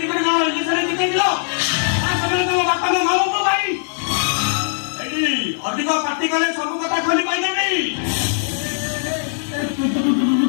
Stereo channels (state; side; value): silent; right; digital silence